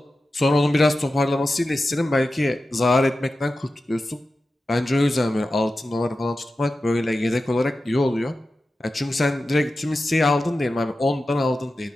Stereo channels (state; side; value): normal; both; correlation 0.93